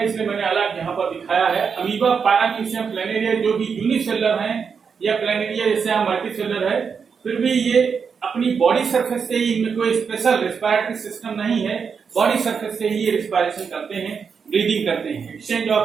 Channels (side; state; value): left; quieter; 6.1 dB